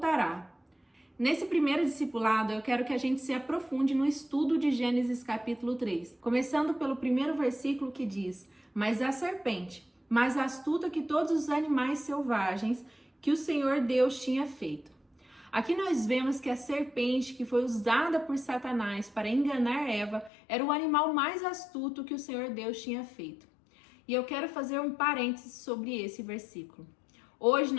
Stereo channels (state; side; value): drops out; right; at 20.3 s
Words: Nesse primeiro discipulado, eu quero que a gente se aprofunde no estudo de Gênesis capítulo 3, começando pelo primeiro versículo que diz: mas a serpente, mais astuta que todos os animais selvagens que o Senhor Deus tinha feito. Aqui nós vemos que a serpente que foi usada por Satanás para enganar Eva era o animal mais astuto que o Senhor Deus tinha feito. E eu quero fazer um parênteses sobre esse versículo. Hoje